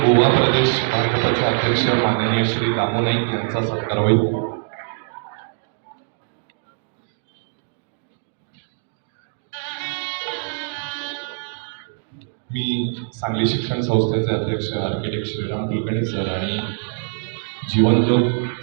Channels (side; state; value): left; silent; 64 dB below the other